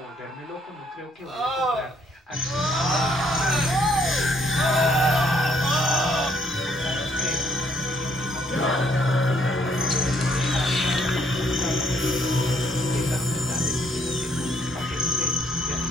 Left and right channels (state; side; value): normal; both; correlation 0.67